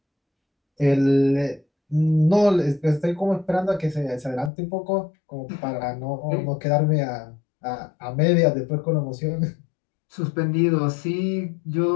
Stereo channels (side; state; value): right; drops out; at 4.5 s